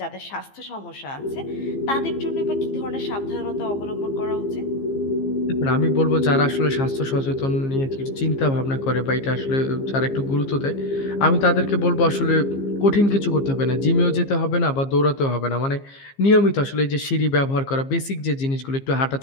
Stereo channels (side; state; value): right; late; 15 ms